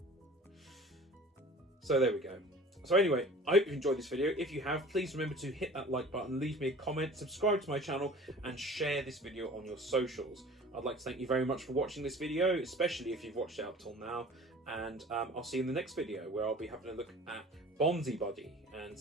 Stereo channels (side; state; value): both; normal; correlation 0.44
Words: So there we go. So anyway, I hope you've enjoyed this video. If you have, please remember to hit that like button, leave me a comment, subscribe to my channel, and share this video on your socials. I'd like to thank you very much for watching this video, especially if you've watched it up till now. And I'll see you in the next video, where I'll be having a look at Bonzi Buddy and